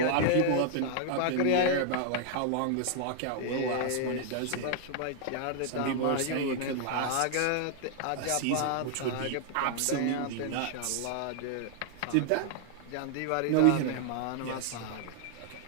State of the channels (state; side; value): different; both; correlation 0.00